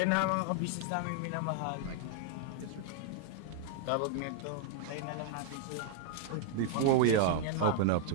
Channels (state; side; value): different; both; correlation 0.00